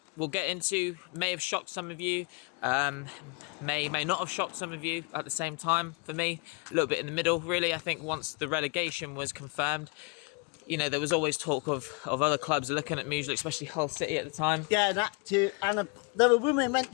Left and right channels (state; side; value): quieter; right; 29.5 dB